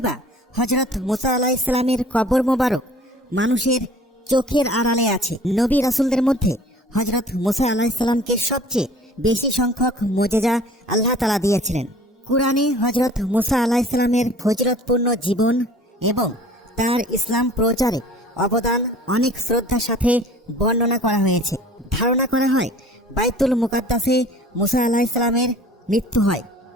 বা হযরত মুসা আলাইহিস সালামের কবর মোবারক মানুষের চোখের আড়ালে আছে? নবী রাসূলদের মধ্যে হযরত মুসা আলাইহিস সালামকে সবচেয়ে বেশি সংখ্যক মুজিজা আল্লাহ তাআলা দিয়েছিলেন। কুরআনে হযরত মুসা আলাইহিস সালামের ফজিলতপূর্ণ জীবন এবং তার ইসলাম প্রচারে অবদান অনেক শ্রদ্ধার সাথে বর্ণনা করা হয়েছে। ধারণা করা হয় বাইতুল মুকাদ্দাসে মুসা আলাইহিস সালামের মৃত্যু হয়,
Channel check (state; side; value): normal; both; correlation 0.48